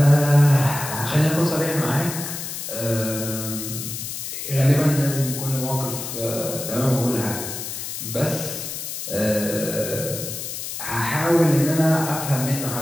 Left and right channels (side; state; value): left; noise; hiss, 7 dB below the sound